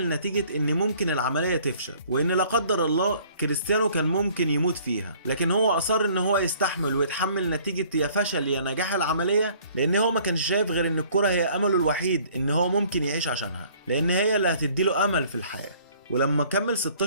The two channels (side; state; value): both; inverted; correlation -0.56